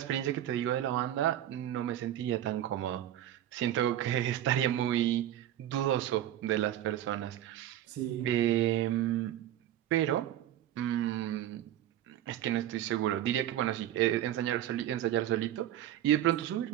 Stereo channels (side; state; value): left; quieter; 12.1 dB